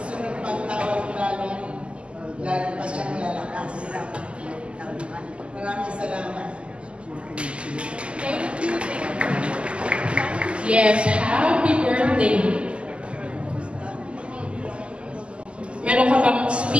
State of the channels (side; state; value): left; late; 0.054 ms